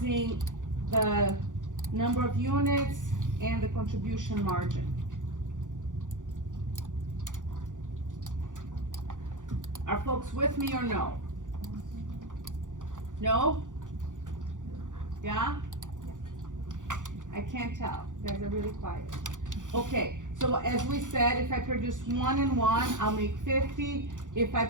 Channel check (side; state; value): left; late; 0.87 ms